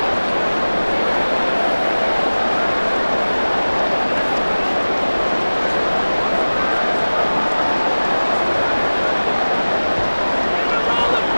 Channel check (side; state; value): both; inverted; correlation -1.00